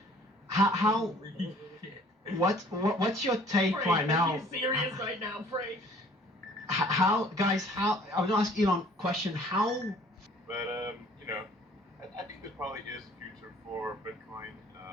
What's your take Frank, right now? Are you serious right now, Frank? How I was gonna ask Elon a question. How? But you know, I think there probably is a future for Bitcoin,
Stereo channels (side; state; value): both; normal; correlation 0.55